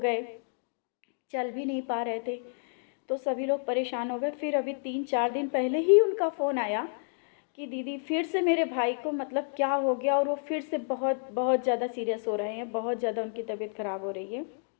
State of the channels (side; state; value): right; silent; digital silence